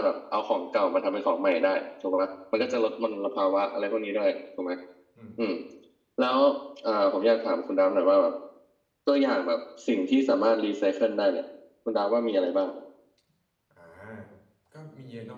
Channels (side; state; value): both; identical; correlation 1.00